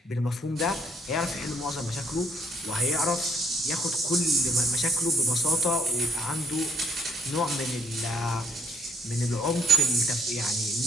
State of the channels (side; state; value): both; normal; correlation 0.67